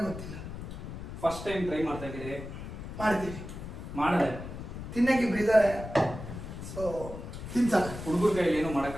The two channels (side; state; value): left; noise; rumble, 9 dB below the sound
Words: ಗೊತ್ತಿಲ್ಲ. ಫಸ್ಟ್ ಟೈಮ್ ಟ್ರೈ ಮಾಡ್ತಾ ಇದ್ದೀರಿ. ಮಾಡ್ತೀವಿ ಮಾಡಿದೆ ತಿನ್ನಕ್ಕೆ ಇಬ್ರು ಇದ್ದಾರೆ. ಸೊ ತಿನ್ಸಲ್ಲ. ಹುಡುಗರ ಕೈಯಲ್ಲಿ ಏನು